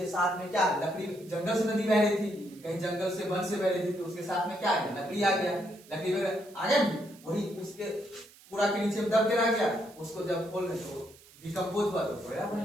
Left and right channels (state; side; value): noise; right; hiss, 24 dB below the sound